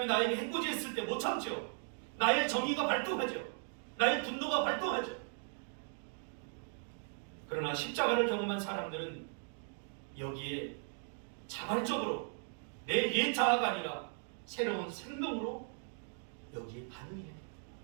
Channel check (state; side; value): silent; left; 53 dB below the other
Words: 나에게 해코지했을 때 못 참죠. 나의 정의가 발동하죠. 나의 분노가 발동하죠. 그러나 십자가를 경험한 사람들은 여기에 자발적으로 내 옛 자아가 아니라 새로운 생명으로 여기에 반응해야 돼요.